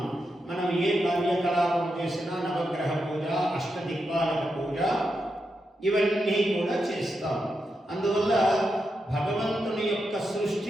మనం ఏ కార్యకలాపం చేసినా నవగ్రహ పూజ, అష్టదిక్పాలక పూజ ఇవన్నీ కూడా చేస్తాం. అందువల్ల భగవంతుని యొక్క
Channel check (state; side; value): normal; both; correlation 0.86